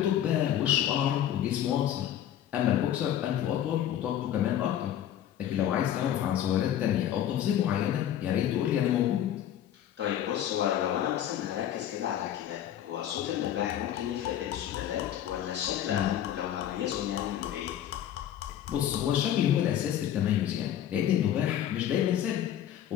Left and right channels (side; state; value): right; quieter; 10.9 dB